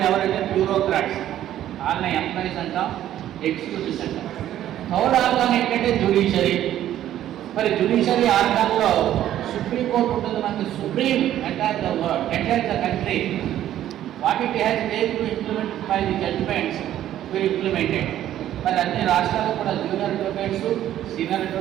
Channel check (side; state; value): left; quieter; 12.1 dB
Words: ఎవరంటే బ్యూరోక్రాట్స్. వాళ్ళని ఎంప్లాయీస్ అంటాం, ఎగ్జిక్యూటివ్స్ అంటాం. థర్డ్ ఆర్గాన్ ఏంటంటే జ్యుడిషియరీ. మరి జ్యుడిషియరీ ఆర్గాన్లో సుప్రీంకోర్టు ఉంటుంది. మనకి supreme entire the world, entire the country. What it has made to implement by the judgments will implemented. మరి అన్ని రాష్ట్రాలు కూడా జూనియర్ అడ్వకేట్స్, సీనియర్